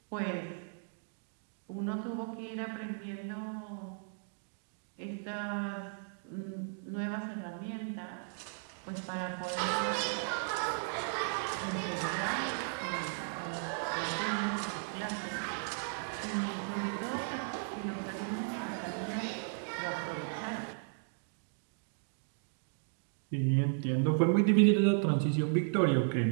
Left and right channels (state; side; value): silent; left; digital silence